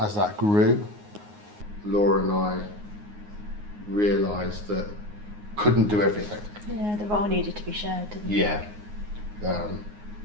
that grew, Laura and I realised that couldn't do everything. Yeah, the role needed to be shared, didn't it? Yeah.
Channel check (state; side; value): late; left; 9.6 ms